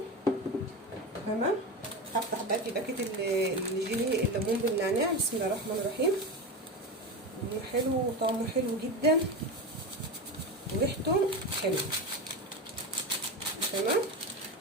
تمام، هفتح بقى في باكت الجيلي الليمون بالنعناع. بسم الله الرحمن الرحيم. حلو وطعمه حلو جدا وريحته حلوه. تمام،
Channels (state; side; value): normal; both; correlation 0.21